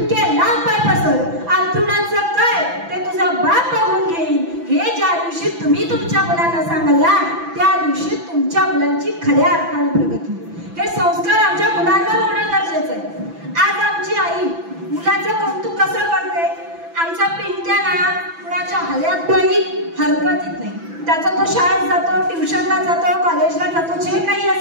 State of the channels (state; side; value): late; left; 6.0 ms